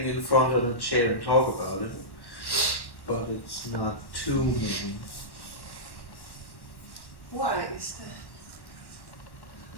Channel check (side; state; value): right; late; 1.1 ms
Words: in front of a chair and talk about it, but it's not too many. Why is that?